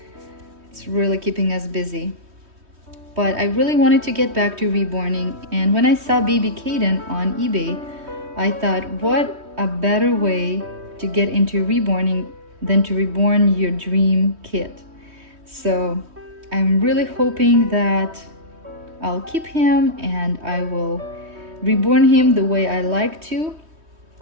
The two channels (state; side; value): late; left; 3.2 ms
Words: it's really keeping us busy. But I really wanted to get back to reborning, and when I saw baby Keyden on eBay, I thought, what a better way to get into reborning than to reborn your dream kit. So I'm really hoping that I'll keep him and I will reborn him the way I like to.